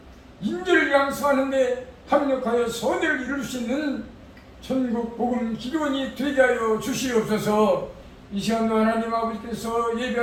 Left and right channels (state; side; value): identical; both; correlation 1.00